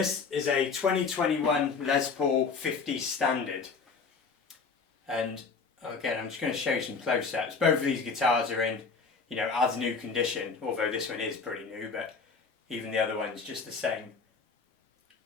is a 2021 Les Paul 50 Standard, and again I'm just going to show you some close-ups. Both of these guitars are in, you know, as new condition, although this one is pretty new, but even the other one's just the same.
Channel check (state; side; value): quieter; right; 4.9 dB